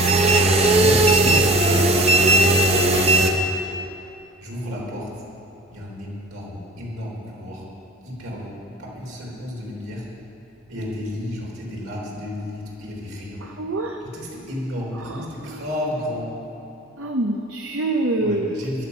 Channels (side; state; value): both; normal; correlation 0.43